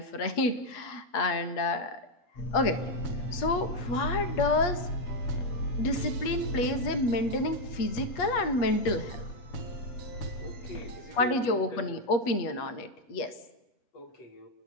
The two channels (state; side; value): late; right; 8.4 ms